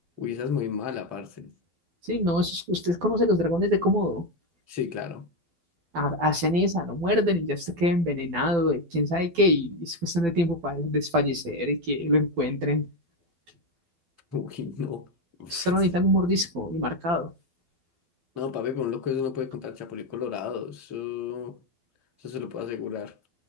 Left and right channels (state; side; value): late; left; 12 ms